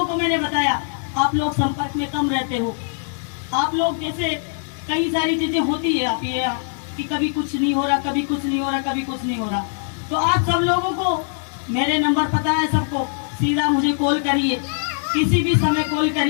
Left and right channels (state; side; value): silent; right; 64 dB below the other